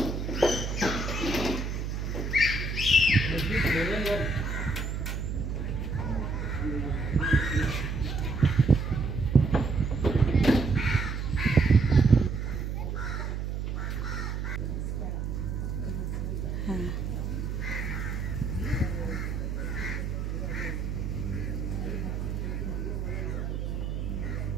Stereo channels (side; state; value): right; noise; hum, 3 dB below the sound